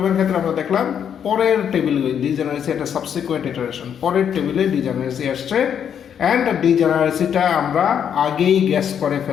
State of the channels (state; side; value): quieter; right; 8.4 dB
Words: ক্ষেত্রে আমরা দেখলাম পরের টেবিল ডিজেনারেসি একটা সাবসিকুয়েন্ট ইটারেশন, পরের টেবিলে ডিজেনারেসি আসছে। অ্যান্ড ডিজেনারেসিটা আমরা আগেই গ্যাস করে